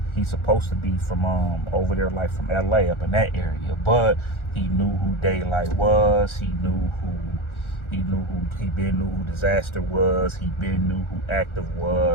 He's supposed to be from over there, like from LA, up in that area. But he knew who Daylight was. He knew who Disaster was. He knew who Active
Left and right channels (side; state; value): right; late; 1.4 ms